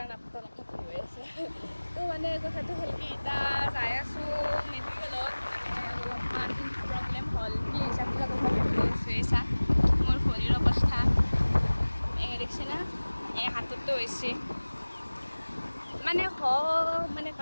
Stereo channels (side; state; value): both; inverted; correlation -1.00